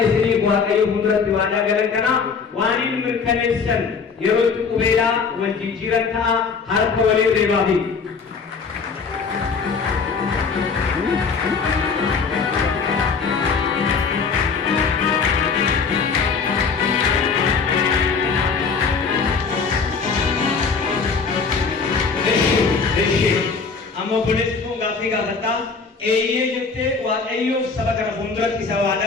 isinii waaqayyo fuulduratti waadaa galan kana waan hin mirkaneessan yeroo itti qubeelaa wal jijjiiran ta'a harka waliin reebaafi. Amma obboleessi kun gaaffii gaafadha. Eeyyee jettee waaqayyoof saba kana fuulduratti isa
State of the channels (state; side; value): quieter; right; 5.2 dB